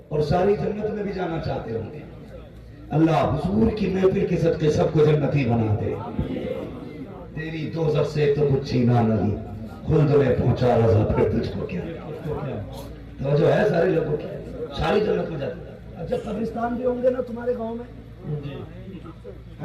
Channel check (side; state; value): both; identical; correlation 1.00